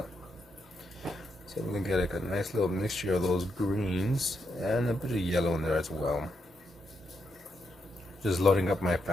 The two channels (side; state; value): both; normal; correlation 0.81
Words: So I'm gonna get like a nice little mixture of those greens and a bit of yellow in there as well. Just loading up my